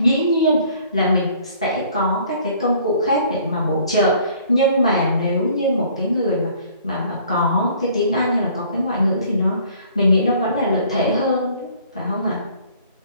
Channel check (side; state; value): both; inverted; correlation -0.56